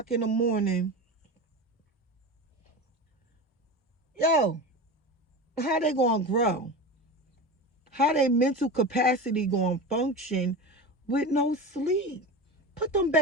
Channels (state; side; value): normal; both; correlation 0.27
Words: in the morning. Yo, how they going to grow? How their mental capacity going to function with no sleep? Put them